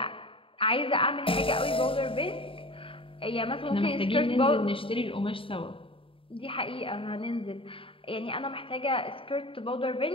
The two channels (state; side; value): late; right; 0.26 ms